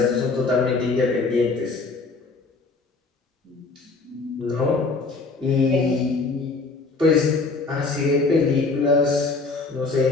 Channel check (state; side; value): quieter; right; 3.9 dB